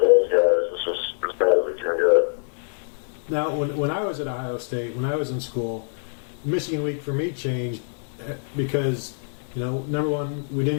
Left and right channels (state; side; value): silent; right; digital silence